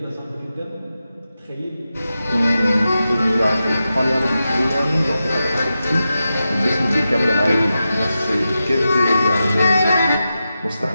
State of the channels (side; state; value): both; inverted; correlation -0.91